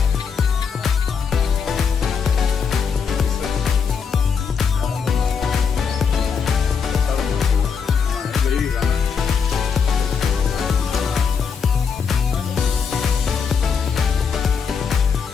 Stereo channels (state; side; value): quieter; right; 6.2 dB